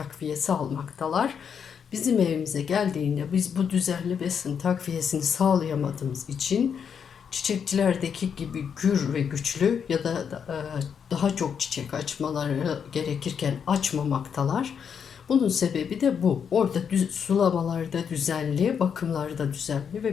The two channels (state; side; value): quieter; right; 7.2 dB